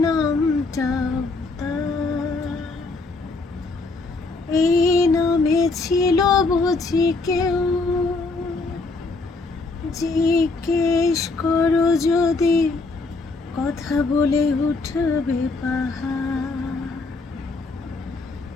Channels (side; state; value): right; quieter; 3.6 dB